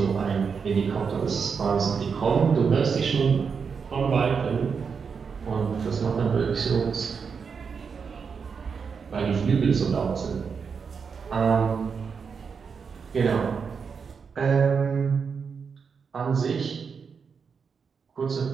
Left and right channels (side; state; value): left; quieter; 5.9 dB